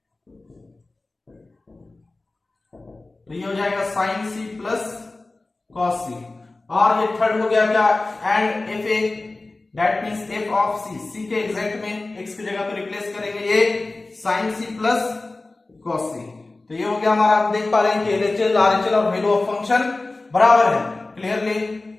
तो ये हो जाएगा sine c plus cos c। और ये थर्ड हो गया क्या, and F A, that means F of c, c के एग्जैक्ट में x की जगह पे रिप्लेस करेंगे ये sine c plus cos c। तो ये हो गया हमारा, आप देख पा रहे हैं कि एलएचएल आरएचएल और वैल्यू ऑफ फंक्शन बराबर है clearly.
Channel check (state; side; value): quieter; right; 3.2 dB